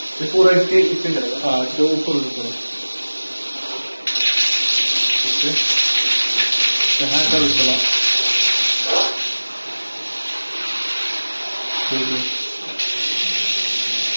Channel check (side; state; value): both; inverted; correlation -1.00